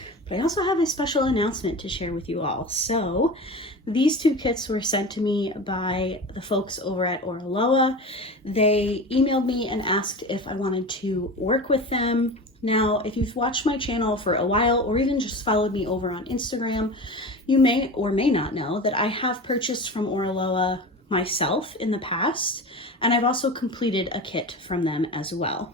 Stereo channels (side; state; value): both; normal; correlation 0.30